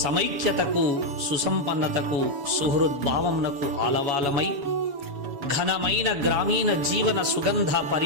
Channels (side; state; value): left; late; 7.1 ms